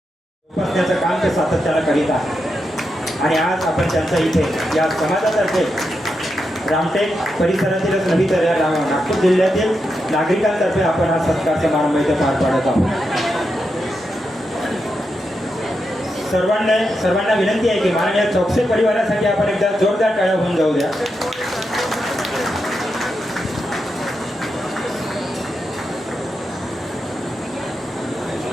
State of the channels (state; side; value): normal; both; correlation 0.86